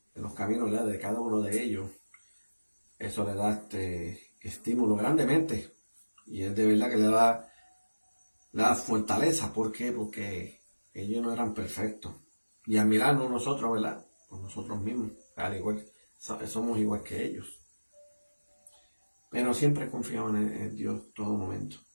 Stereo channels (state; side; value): inverted; both; correlation -1.00